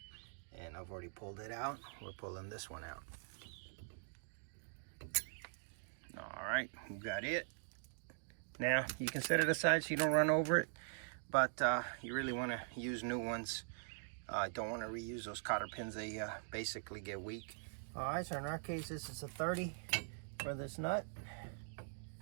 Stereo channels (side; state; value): left; silent; digital silence